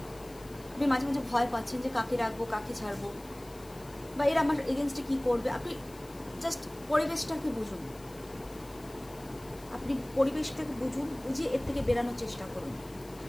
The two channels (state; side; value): noise; left; hiss, 22 dB below the sound